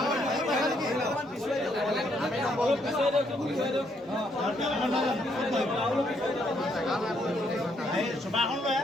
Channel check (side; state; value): both; normal; correlation 0.72